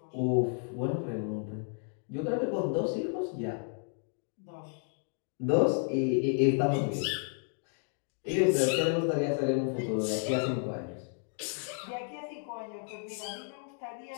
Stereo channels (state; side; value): silent; right; 56 dB below the other